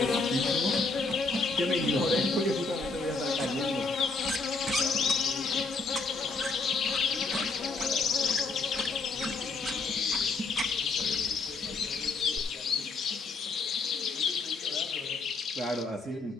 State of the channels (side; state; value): right; quieter; 3.9 dB